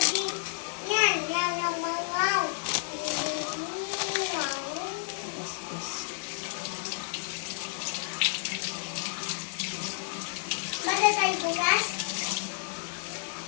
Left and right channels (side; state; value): right; silent; digital silence